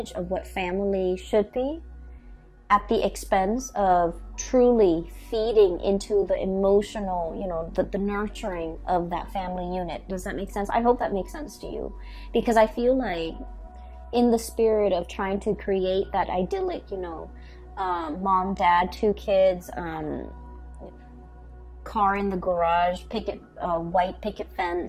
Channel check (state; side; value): identical; both; correlation 1.00